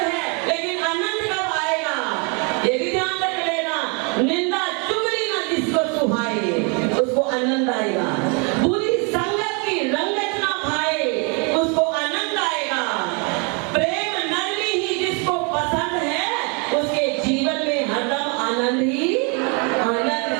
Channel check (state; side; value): quieter; left; 34.3 dB